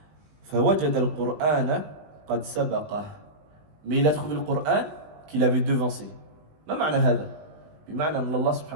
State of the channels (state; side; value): late; left; 20 ms